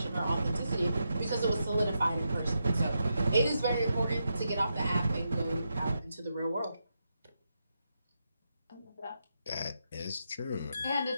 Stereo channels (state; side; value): inverted; both; correlation -0.84